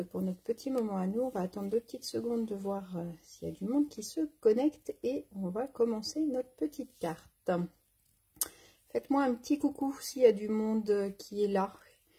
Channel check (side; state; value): both; identical; correlation 1.00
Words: pour notre petit moment à nous. On va attendre 2 petites secondes de voir s'il y a du monde qui se connecte et on va commencer notre petite carte. Faites-moi un petit coucou s'il y a du monde qui est là,